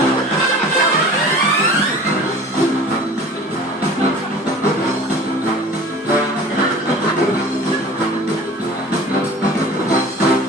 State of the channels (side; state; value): both; normal; correlation 0.43